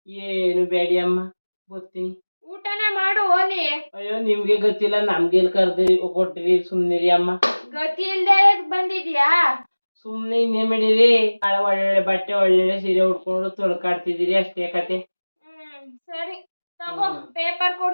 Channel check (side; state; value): both; inverted; correlation -1.00